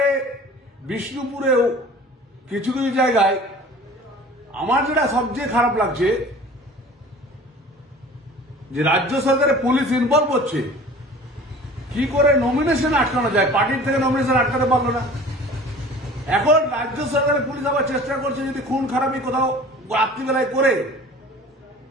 বিষ্ণুপুরেও কিছু কিছু জায়গায় আমার যেটা সবচেয়ে খারাপ লাগছে যে রাজ্য সরকারের পুলিশ ইনভলভ হচ্ছে, কি করে নমিনেশন আটকানো যায়, পার্টির থেকে নমিনেশন আটকাতে পারলো না। এখন রাজ্য সরকারের পুলিশ আবার চেষ্টা করছে যদি খুন খারাপি কোথাও রাত্রিবেলায় করে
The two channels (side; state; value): both; normal; correlation 0.44